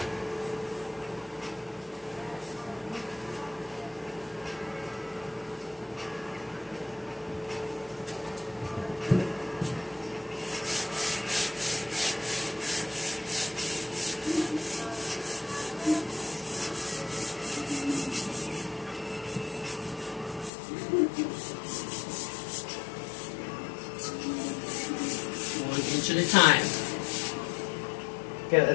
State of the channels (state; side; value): drops out; right; at 20.5 s